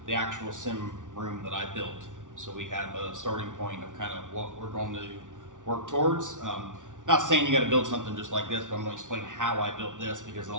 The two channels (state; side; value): late; left; 0.87 ms